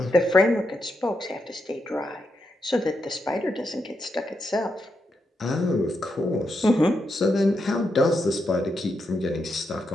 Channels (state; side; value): normal; both; correlation 0.83